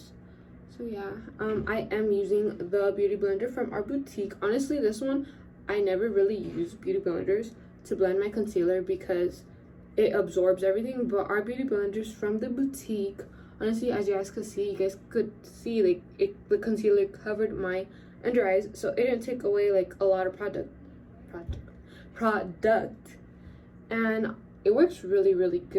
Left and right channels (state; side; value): identical; both; correlation 1.00